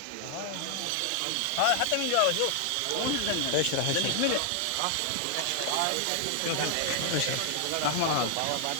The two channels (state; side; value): different; both; correlation 0.00